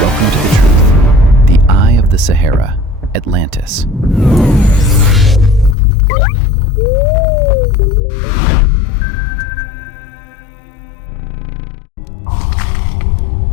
to the truth. The Eye of the Sahara, Atlantis. Chapter 1. An impossible coincidence. Let us open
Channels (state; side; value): drops out; right; at 5.8 s